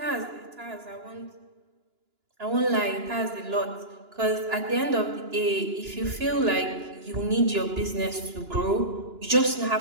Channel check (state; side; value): late; left; 2.9 ms